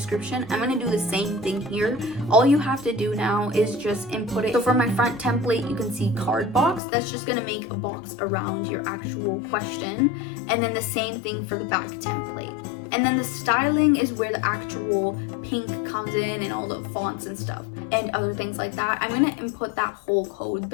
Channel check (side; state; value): right; drops out; at 6.8 s